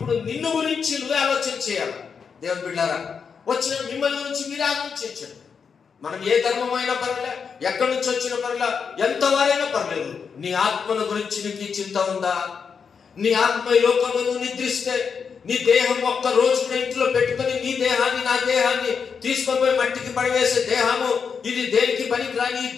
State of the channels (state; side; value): quieter; right; 6.1 dB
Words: నిన్ను గురించి నువ్వే ఆలోచన చేయాలి. దేవుని బిడ్డారా, వచ్చిన మిమ్మల్ని గురించి మీరే ఆలోచించండి. మనం ఏ ధర్మం అయినా పర్లే, ఎక్కడి నుంచి వచ్చిన పర్లే, ఎంత వారైనా పర్లేదు, నీ ఆత్మను గురించి నీకు చింత ఉందా? నీ ఆత్మ ఈ లోకంలో నువ్వు నిద్రిస్తే నీ దేహం ఒక్క రోజు కూడా ఇంట్లో పెట్టుకొని నీ దేహాన్ని, నా దేహాన్ని తీసుకొని పోయి మట్టికి పడివేసే దేహము ఇది దేనికి పనికిరాని ఈ